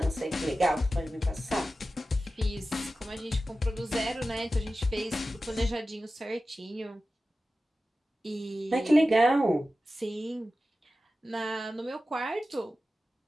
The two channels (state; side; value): normal; both; correlation 0.94